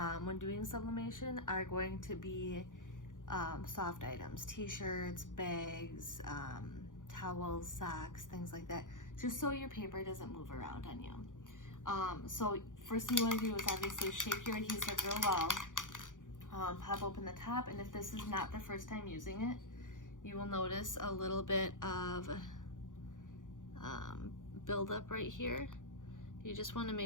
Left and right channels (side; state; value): right; late; 0.88 ms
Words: when doing sublimation are going to be soft items, t-shirts, bags, towels, socks, things like that, just so your paper doesn't move around on you. So first thing you want to do is obviously shake your adhesive real well, pop open the top, and if this is not the first time using it, you will notice a little bit of buildup right here. You just want to